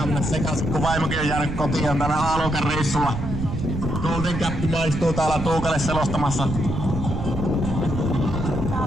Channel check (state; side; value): noise; right; rumble, 5 dB below the sound